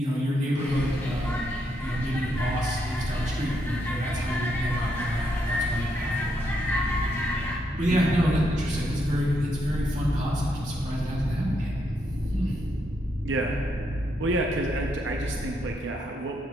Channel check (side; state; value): both; normal; correlation 0.78